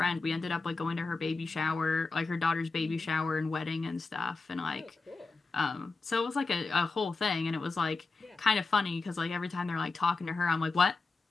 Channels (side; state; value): right; quieter; 3.9 dB